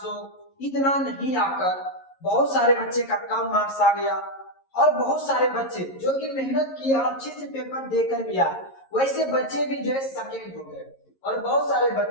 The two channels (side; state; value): right; late; 11 ms